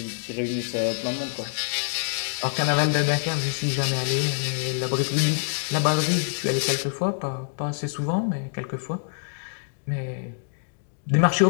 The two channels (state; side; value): silent; right; digital silence